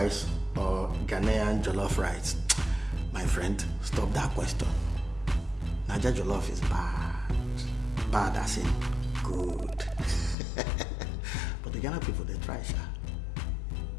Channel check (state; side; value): drops out; right; at 10.4 s